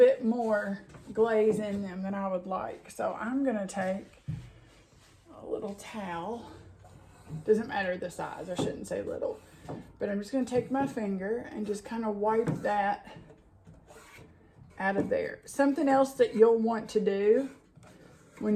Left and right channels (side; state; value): both; identical; correlation 1.00